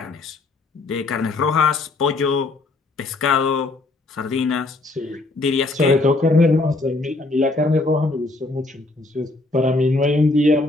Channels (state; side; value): quieter; right; 3.1 dB